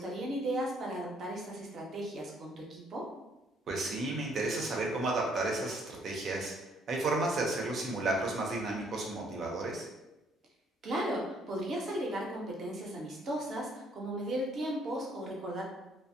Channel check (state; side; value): normal; both; correlation 0.66